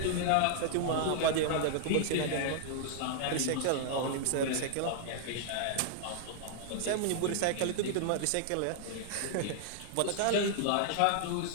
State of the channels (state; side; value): different; both; correlation -0.01